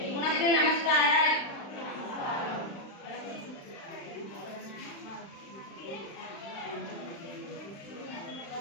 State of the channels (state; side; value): late; right; 35 ms